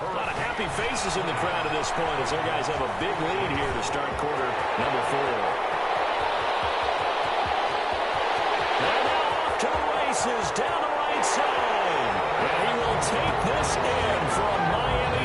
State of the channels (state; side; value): identical; both; correlation 1.00